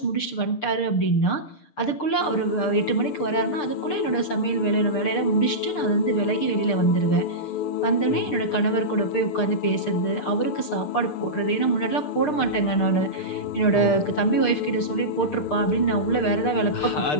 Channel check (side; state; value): right; late; 6.7 ms